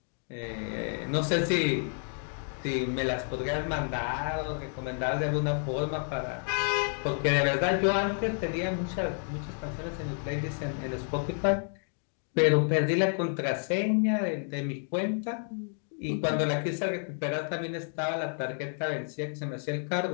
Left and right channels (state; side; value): silent; right; 57 dB below the other